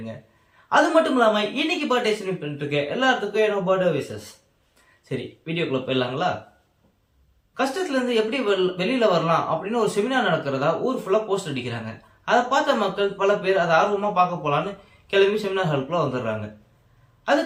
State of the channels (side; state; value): both; identical; correlation 1.00